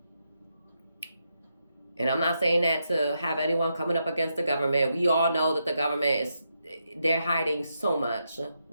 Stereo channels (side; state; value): both; inverted; correlation -0.83